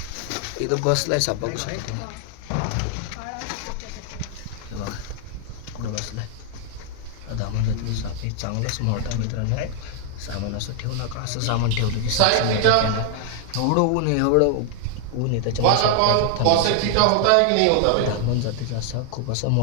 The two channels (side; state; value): both; different; correlation 0.00